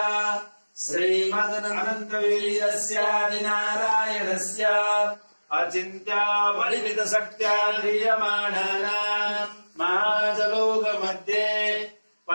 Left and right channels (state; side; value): inverted; both; correlation -1.00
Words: श्रीमदनन्तवीर्यस्यादिनारायणस्य अचिन्त्या परिमित शक्त्या ध्रियमाणानाम् महाजलोकमध्ये